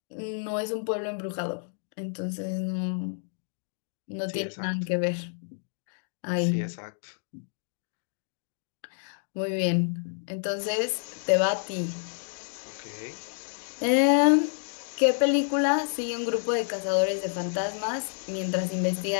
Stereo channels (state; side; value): silent; right; digital silence